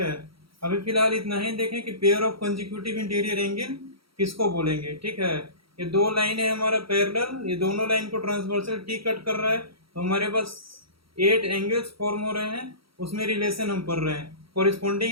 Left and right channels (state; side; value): late; left; 0.75 ms